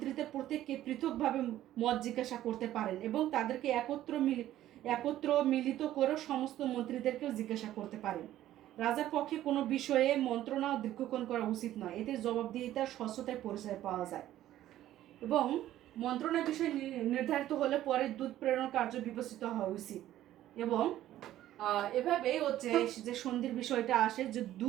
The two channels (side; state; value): left; quieter; 13.3 dB